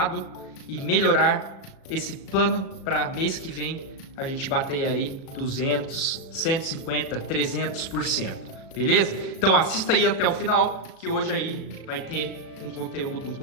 e melhorar esse plano para mês que vem a gente bater aí 200, 150, 300%, beleza? Então assista aí até o final que hoje aí vai ter um conteúdo um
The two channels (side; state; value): right; late; 36 ms